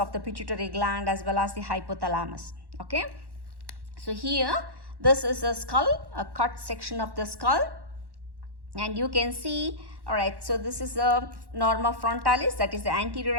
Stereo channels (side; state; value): left; late; 1.1 ms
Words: of the pituitary gland as well as the hypothalamus. Okay. So here, this is a skull, a cut section of the skull, and you can see, all right, so this is a norma frontalis, that is the anterior